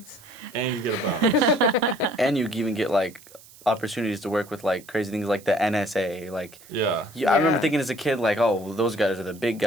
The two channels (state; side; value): noise; right; hiss, 22 dB below the sound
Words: And you get a bonus. And you even get like opportunities to work with like crazy things like the NSA. Like, Yeah. I remember Yeah. thinking as a kid, like, oh, well, those guys are the big